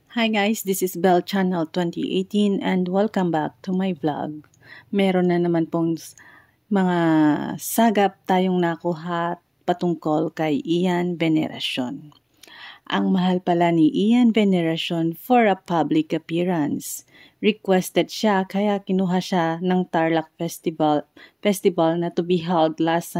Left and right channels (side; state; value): both; identical; correlation 1.00